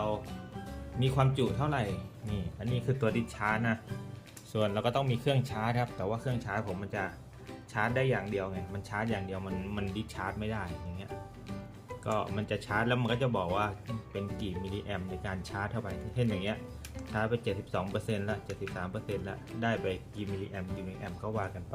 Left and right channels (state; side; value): identical; both; correlation 1.00